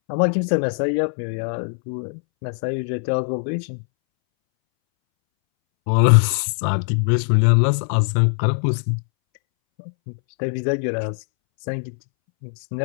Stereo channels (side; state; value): right; silent; 63 dB below the other